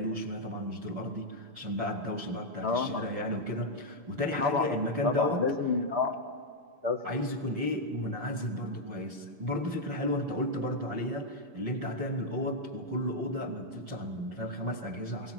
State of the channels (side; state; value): left; late; 6.9 ms